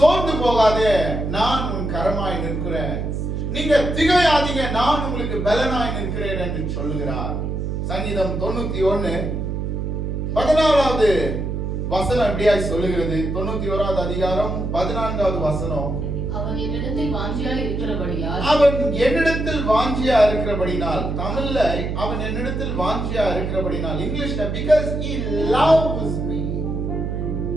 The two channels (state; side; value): noise; right; hum, 3 dB below the sound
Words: போகாதே, நான் உன் கரமாய் நிற்கிறேன். நீங்க திகையாதீங்க, நான் உங்களுக்கு பலனாய் நிற்கிறேன் என்று சொல்லுகிறார். சங்கீதம் 91:14 வசனம் எப்படியாய் சொல்லுகிறது? 91வது அதிகாரம் 14வது வசனம். அவன் என்னிடத்தில் வாஞ்சியா இருக்கிறபடினால், தமிழ்ல அவன் என்னிடத்தில் வாஞ்சியா இருக்கிறபடினால், இங்கிலீஷ்ல because he loves me,